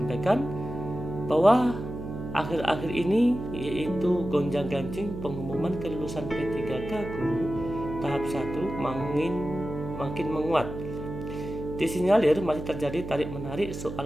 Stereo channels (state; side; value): noise; right; hum, 8 dB below the sound